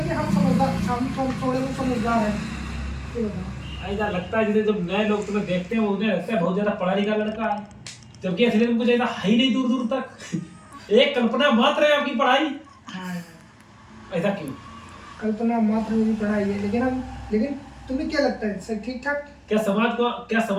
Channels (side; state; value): both; identical; correlation 1.00